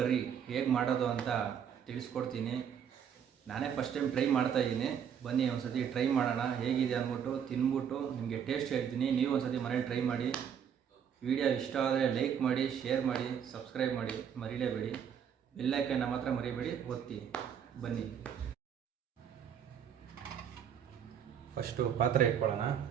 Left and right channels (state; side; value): quieter; left; 8.2 dB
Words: ಹೇಗೆ ಮಾಡೋದು ಅಂತ ತಿಳಿಸ್ಕೊಡ್ತೀನಿ. ನಾನೇ ಫಸ್ಟ್ ಟೈಮ್ ಟ್ರೈ ಮಾಡ್ತಾಯಿದ್ದೀನಿ. ಬನ್ನಿ ಒಂದ್ಸತಿ ಟ್ರೈ ಮಾಡೋಣ, ಹೇಗಿದೆ ಅಂದ್ಬಿಟ್ಟು ತಿಂದ್ಬಿಟ್ಟು ನಿಮಗೆ ಟೇಸ್ಟ್ ಹೇಳ್ತೀನಿ. ನೀವು ಒಂದ್ಸತಿ ಮನೇಲಿ ಟ್ರೈ ಮಾಡಿ. ವಿಡಿಯೋ ಇಷ್ಟ ಆದರೆ ಲೈಕ್ ಮಾಡಿ, ಶೇರ್ ಮಾಡಿ, ಸಬ್ಸ್ಕ್ರೈಬ್ ಮಾಡಿ, ಮರಿಲೇಬೇಡಿ. ಬೆಲ್ ಐಕಾನ್ ಮಾತ್ರ ಮರಿಬೇಡಿ, ಒತ್ತಿ. ಬನ್ನಿ ಫಸ್ಟು ಪಾತ್ರೆ ಇಟ್ಕೊಳ್ಳೋಣ.